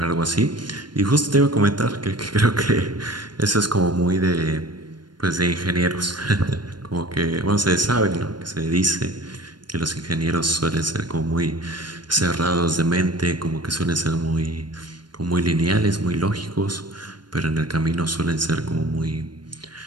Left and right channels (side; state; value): left; late; 0.71 ms